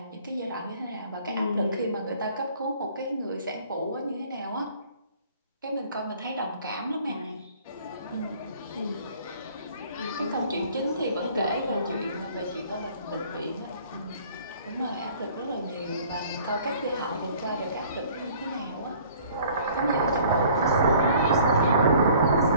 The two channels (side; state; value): both; inverted; correlation -0.53